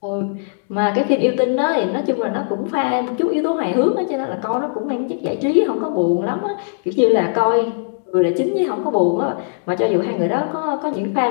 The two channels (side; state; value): right; silent; digital silence